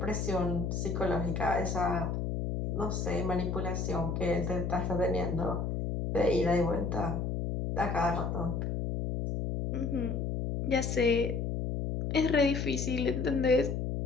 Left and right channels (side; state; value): left; noise; hum, 1 dB below the sound